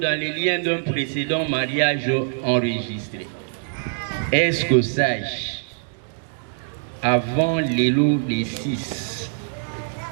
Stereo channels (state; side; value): silent; left; digital silence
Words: les liens d'un précédent mariage enregistré. Est-ce que Sage, avant l'élo des 6,